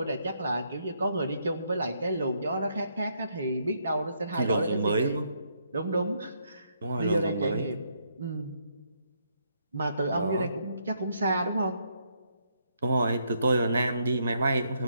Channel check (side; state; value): both; inverted; correlation -0.74